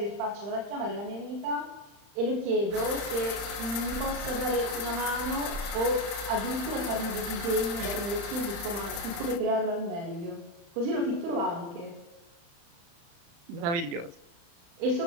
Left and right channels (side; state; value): left; late; 35 ms